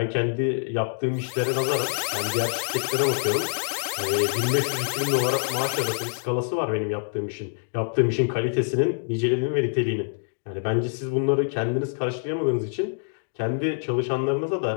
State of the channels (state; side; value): silent; right; digital silence